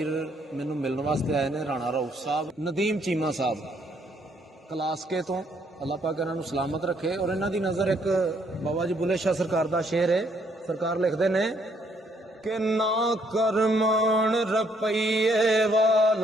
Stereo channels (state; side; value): normal; both; correlation 0.69